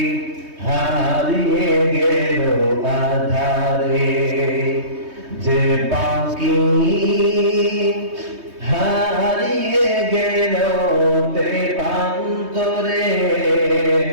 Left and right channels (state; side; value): late; left; 3.2 ms